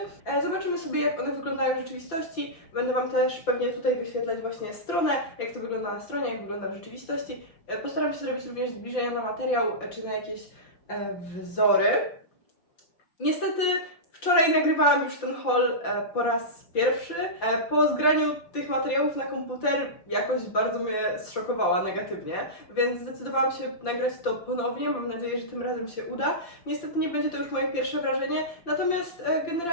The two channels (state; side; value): late; right; 5.8 ms